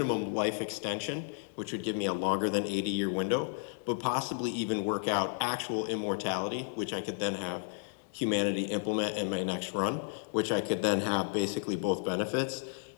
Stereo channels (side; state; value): right; silent; digital silence